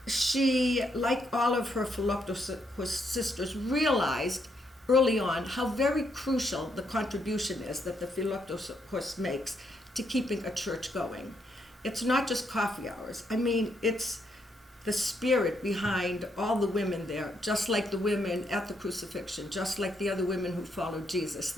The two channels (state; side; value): normal; both; correlation 0.76